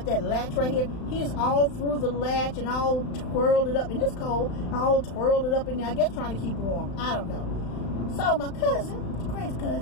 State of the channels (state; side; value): late; right; 35 ms